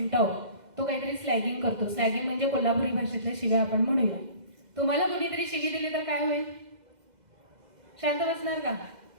तो काहीतरी स्लॅगिंग करतो. स्लॅगिंग म्हणजे कोल्हापुरी भाषेतल्या शिव्या आपण म्हणूया. तुम्हाला कुणीतरी शिवी दिली तर काय होईल? शांत बसणार का?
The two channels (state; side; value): late; left; 2.0 ms